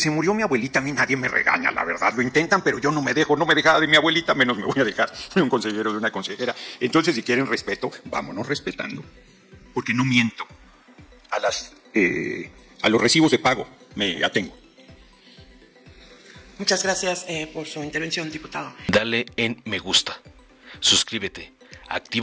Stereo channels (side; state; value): both; identical; correlation 1.00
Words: murió mi abuelita a mí nadie me regaña, la verdad. Lo intentan, pero yo no me dejaba de mi abuelita, menos me voy a dejar de un consejero, de una consejera. Entonces, si quieren respeto, vámonos respetando. Porque no miento. A los recibos de pago me atengo. Muchas gracias por su intervención, diputado. Dale en me gusta, suscríbete,